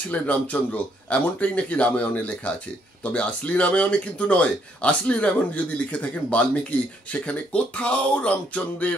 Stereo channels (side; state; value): both; normal; correlation 0.71